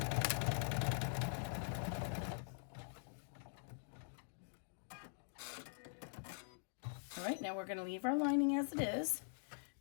All right, now we're going to leave our lining as it is.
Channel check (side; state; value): right; silent; digital silence